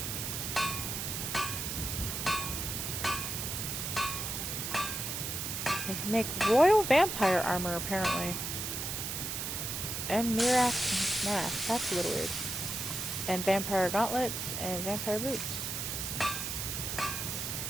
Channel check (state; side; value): noise; right; hiss, 3 dB below the sound